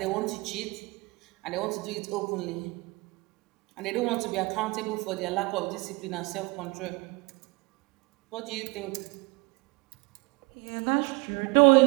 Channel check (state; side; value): quieter; left; 26.1 dB